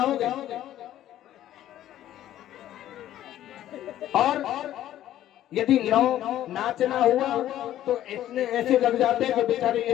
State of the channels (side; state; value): right; quieter; 12.6 dB